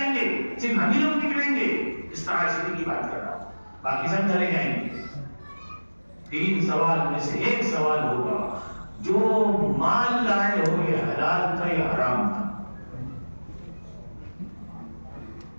گے, صرف ہم ہی لوگ نکلیں گے. اس طرح کی بات کر رہا ہوں, باقی سب چلے جائیں گے. 3 سوال میں سے ایک سوال ہوگا, جو مال لائے ہو یہ حلال تھا یا حرام تھا.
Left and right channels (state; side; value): inverted; both; correlation -1.00